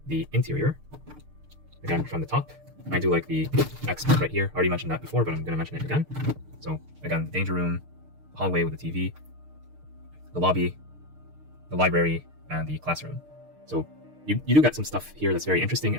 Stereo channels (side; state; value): left; late; 6.6 ms